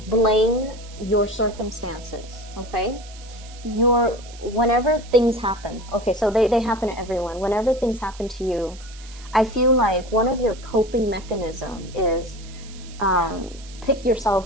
blame your circumstances, okay? Whenever things happen, okay, so they happen to everyone. Whenever things happen to you, I feel like one of your coping mechanisms is pick yourself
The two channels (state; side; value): noise; right; hiss, 20 dB below the sound